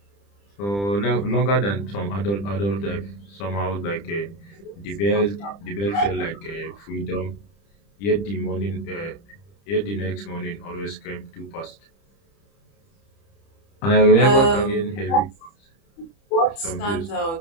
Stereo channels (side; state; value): right; late; 30 ms